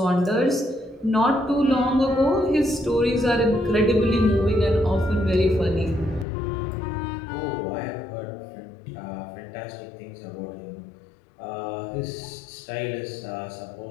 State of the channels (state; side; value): drops out; right; at 6.2 s